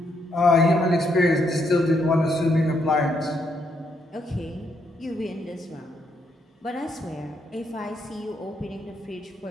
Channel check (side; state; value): both; normal; correlation 0.76